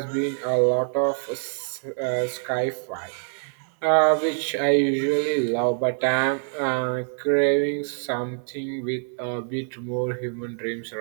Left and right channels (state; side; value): silent; left; 62 dB below the other